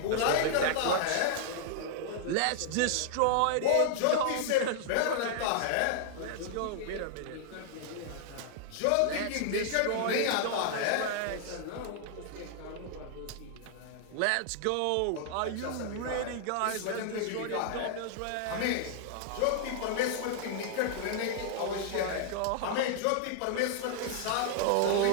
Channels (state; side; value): different; both; correlation -0.01